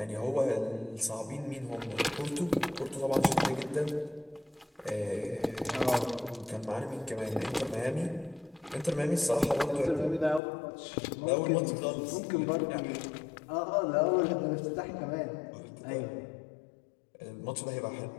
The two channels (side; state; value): right; drops out; at 10.4 s